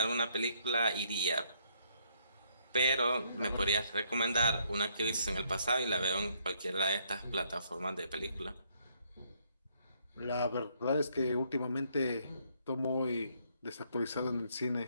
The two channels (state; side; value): inverted; both; correlation -0.69